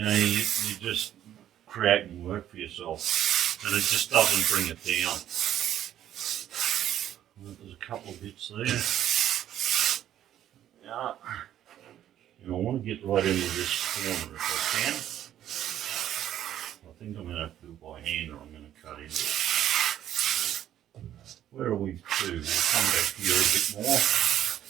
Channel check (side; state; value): left; quieter; 11.4 dB